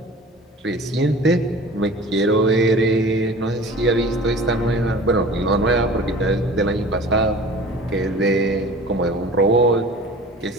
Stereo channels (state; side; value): normal; both; correlation 0.41